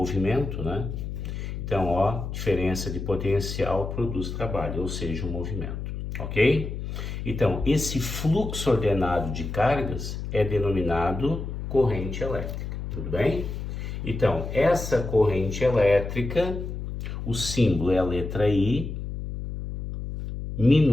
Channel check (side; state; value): left; noise; hum, 6 dB below the sound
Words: né? Então, ó, diferença de potencial produz trabalho, ou seja, um movimento, ok? Então, esse fluxo ordenado de cargas é denominado corrente elétrica, tudo bem? Então, essa corrente elétrica, o símbolo é a letra I,